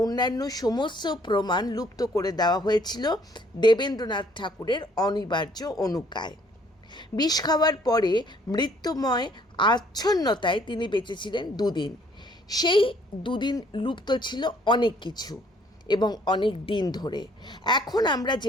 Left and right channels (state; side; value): normal; both; correlation 0.62